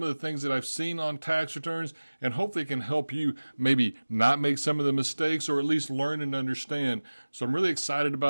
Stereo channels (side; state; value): both; inverted; correlation -1.00